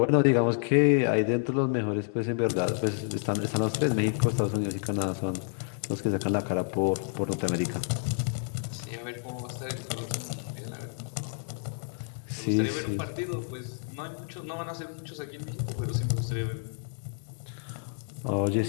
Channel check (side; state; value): right; silent; 57 dB below the other